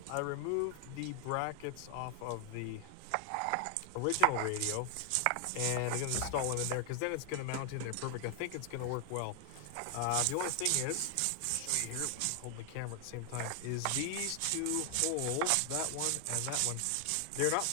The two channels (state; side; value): different; both; correlation 0.00